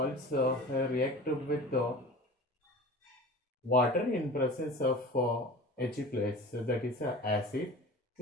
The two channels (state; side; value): normal; both; correlation 0.38